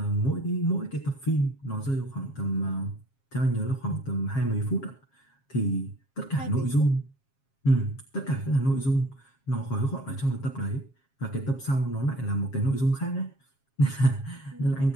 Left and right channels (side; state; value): right; late; 7.4 ms